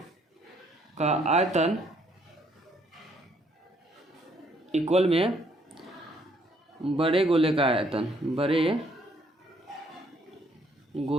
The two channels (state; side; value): normal; both; correlation 0.67